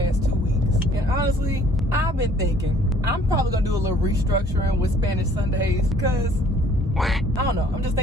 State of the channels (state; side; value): normal; both; correlation 0.58